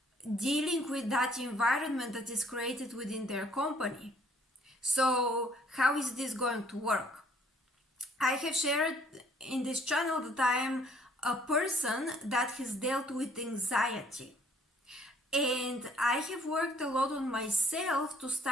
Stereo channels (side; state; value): both; normal; correlation 0.61